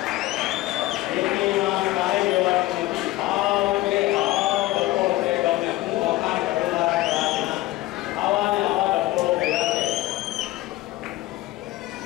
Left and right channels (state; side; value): quieter; right; 17.6 dB